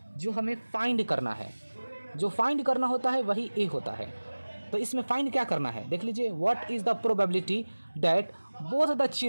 जो हमें फाइंड करना है, जो फाइंड करना होता है वही ए होता है। तो इसमें फाइंड क्या करना है, देख लीजिए, what is the probability that both the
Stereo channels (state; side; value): inverted; both; correlation -1.00